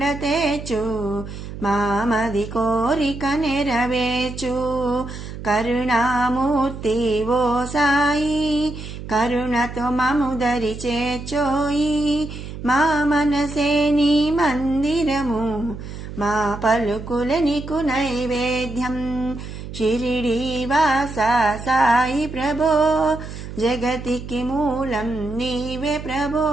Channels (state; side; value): noise; right; hum, 10 dB below the sound